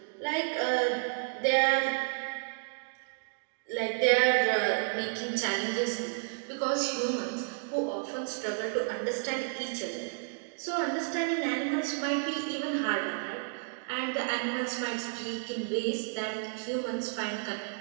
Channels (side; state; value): left; silent; digital silence